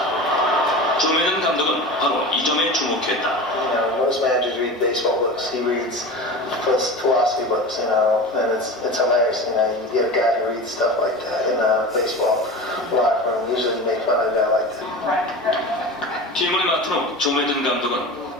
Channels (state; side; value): normal; both; correlation 0.31